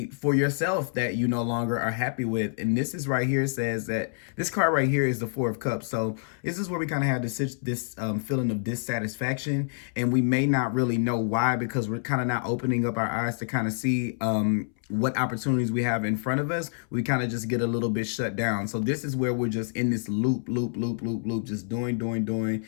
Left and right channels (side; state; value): right; silent; 60 dB below the other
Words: for yourself that you no longer are happy with. And this is right here, says that this card right here is the Four of Cups. So this is where we kind of have this feeling of dissatisfaction, and we may not really know why, because we're kind of not opening up our eyes to kind of see what opportunities we have in front of us. We kind of just get a little bit shut down. So this is where we're just in this loop, just doing,